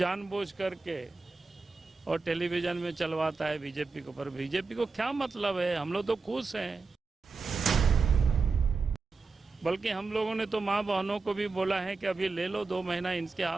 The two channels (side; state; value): left; quieter; 4.2 dB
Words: करके और टेलीविजन में चलवाता है बीजेपी को। पर बीजेपी को क्या मतलब है? हम लोग तो खुश हैं। बल्कि हम लोगों ने तो माँ बहनों को भी बोला है कि अभी ले लो 2 महीना इनके